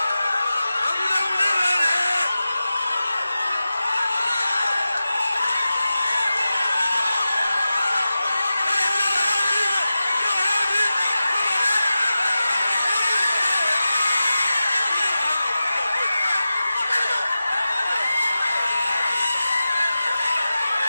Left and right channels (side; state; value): both; inverted; correlation -0.93